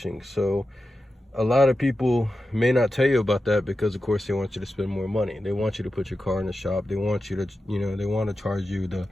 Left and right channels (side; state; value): both; normal; correlation 0.91